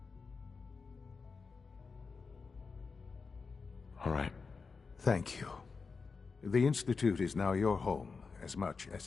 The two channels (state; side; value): quieter; right; 4.8 dB